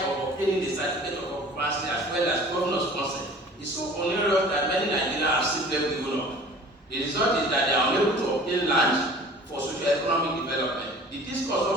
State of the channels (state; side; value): normal; both; correlation 0.46